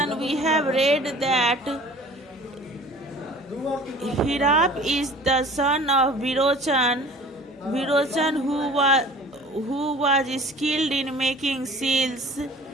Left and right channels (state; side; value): normal; both; correlation 0.46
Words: we have read that Hirap is the son of Virochan who was skilled in making seals